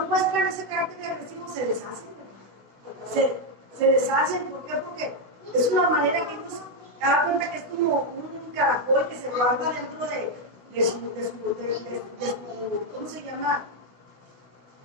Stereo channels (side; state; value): left; late; 16 ms